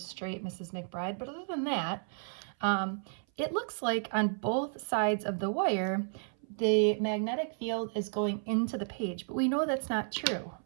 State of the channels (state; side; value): silent; left; 56 dB below the other